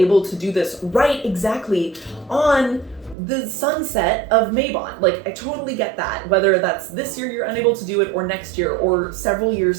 to do this right exactly on the sunset of Mabon. Like, I totally get that. Whether that's this year you're unable to do it, or next year, or several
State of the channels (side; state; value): left; drops out; at 3.2 s